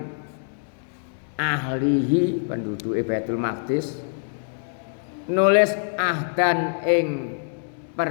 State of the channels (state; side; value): silent; right; digital silence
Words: ahlihi penduduke Baitul Maqdis nulis ahdan ing